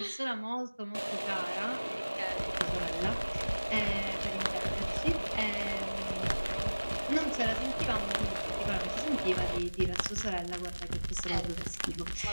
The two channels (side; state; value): both; inverted; correlation -1.00